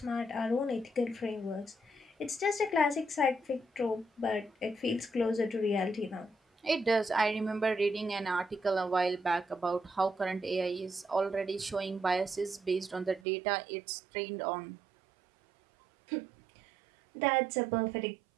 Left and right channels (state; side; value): drops out; left; at 13.2 s